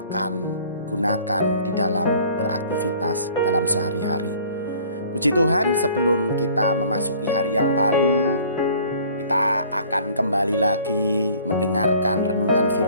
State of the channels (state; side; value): inverted; both; correlation -0.53